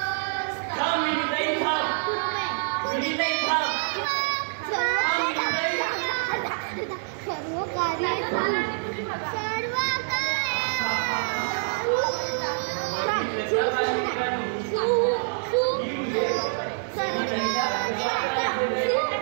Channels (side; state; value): left; silent; digital silence